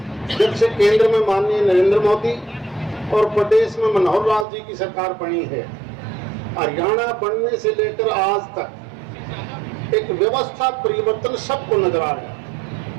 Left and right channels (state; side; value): drops out; left; at 4.5 s